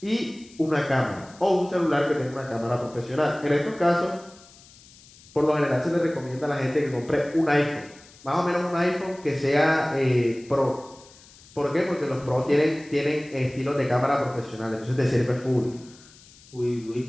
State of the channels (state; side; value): noise; left; hiss, 24 dB below the sound